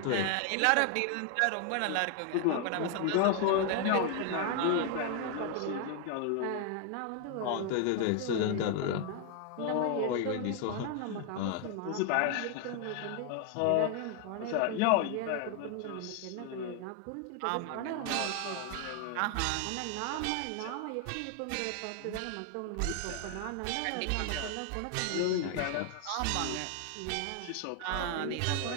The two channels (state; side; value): different; both; correlation 0.00